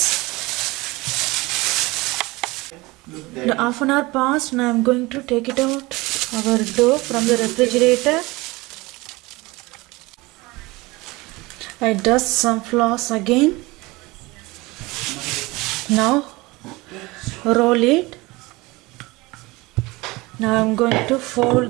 The half an hour passed. Now I am going to take it out our dough from the refrigerator. I dust some flour again. Now roll it. Now I am going to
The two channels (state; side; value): quieter; left; 22.5 dB